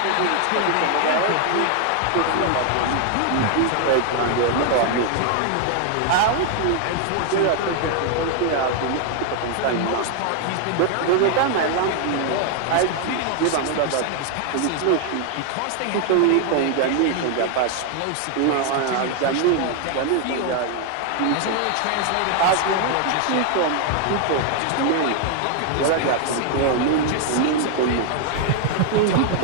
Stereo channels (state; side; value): different; both; correlation 0.00